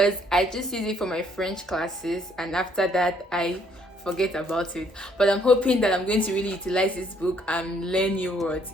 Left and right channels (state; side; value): normal; both; correlation 0.66